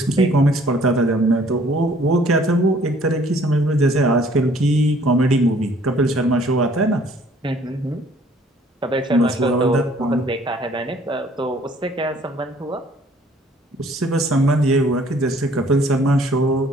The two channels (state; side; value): normal; both; correlation 0.58